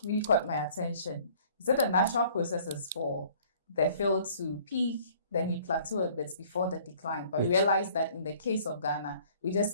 really caught my attention. You said the natural process is for the field to peak, then you plateau a bit before the decline. But we realize that in the case of Ghana, we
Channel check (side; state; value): both; inverted; correlation -0.55